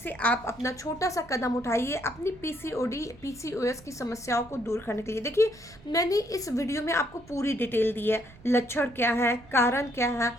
आप अपना छोटा सा कदम उठाइए अपनी पीसीओडी पीसीओएस की समस्याओं को दूर करने के लिए। देखिए, मैंने इस वीडियो में आपको पूरी डिटेल दी है, लक्षण क्या है, कारण क्या है,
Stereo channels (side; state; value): right; noise; rumble, 23 dB below the sound